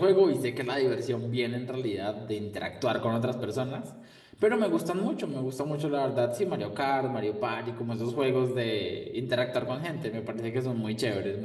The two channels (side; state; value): both; identical; correlation 1.00